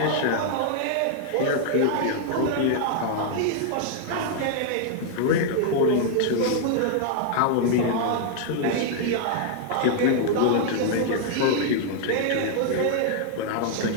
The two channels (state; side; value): different; both; correlation -0.01